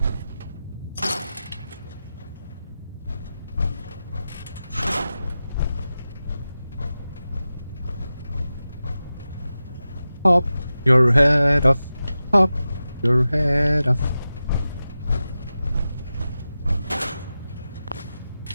Pop your head off. Pop your head off.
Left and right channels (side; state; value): both; inverted; correlation -0.93